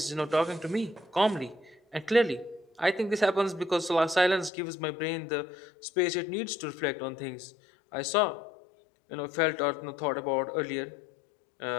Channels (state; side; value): drops out; right; at 4.5 s